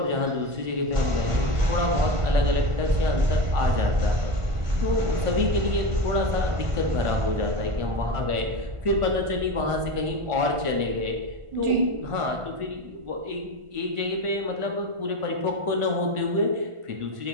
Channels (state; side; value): late; left; 1.5 ms